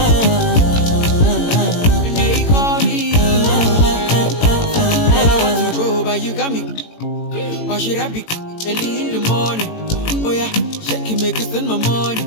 Why should I be early in the morning? Oh yeah, shake it, make it spend my money.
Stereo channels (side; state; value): right; late; 18 ms